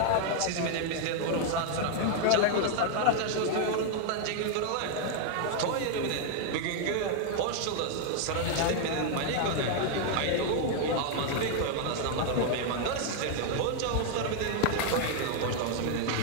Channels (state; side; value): different; both; correlation 0.00